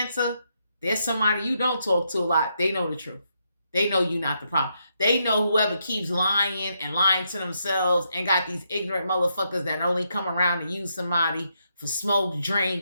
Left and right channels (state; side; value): inverted; both; correlation -0.79